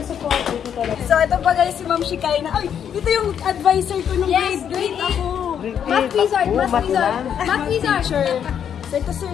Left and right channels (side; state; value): right; quieter; 8.6 dB